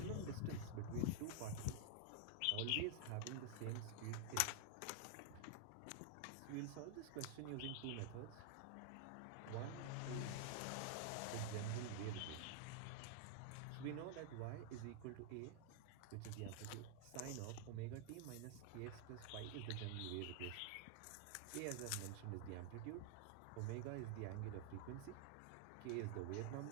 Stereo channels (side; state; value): both; different; correlation 0.00